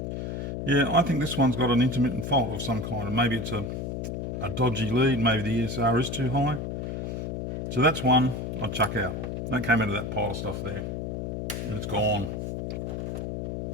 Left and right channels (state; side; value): noise; left; hum, 4 dB below the sound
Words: Yeah, I think this one's got an intermittent fault of some kind, and maybe it's a dodgy lead, maybe the ESR is too high. So that's one I'd chuck out. That came out of that pile of stuff there, and it's gone.